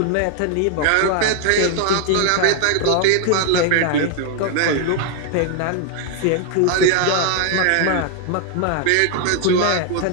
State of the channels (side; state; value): both; different; correlation 0.00